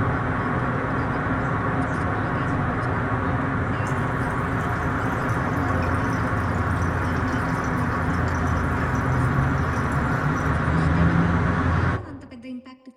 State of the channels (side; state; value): both; identical; correlation 1.00